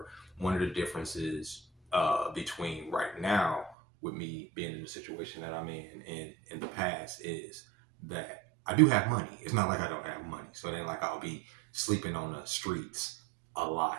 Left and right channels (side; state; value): left; drops out; at 3.8 s